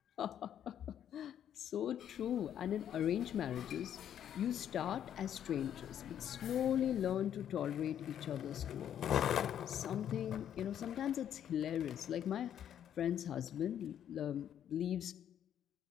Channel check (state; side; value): quieter; right; 9.9 dB